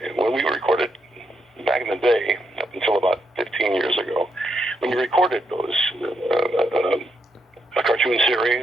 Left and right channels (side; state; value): both; normal; correlation 0.79